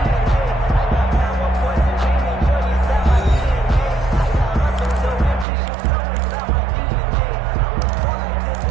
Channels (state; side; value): drops out; left; at 5.5 s